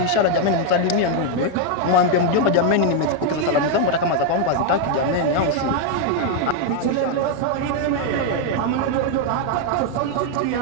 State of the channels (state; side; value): different; both; correlation 0.00